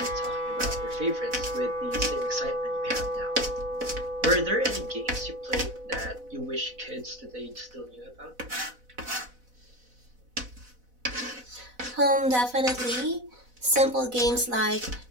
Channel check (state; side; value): late; left; 4.0 ms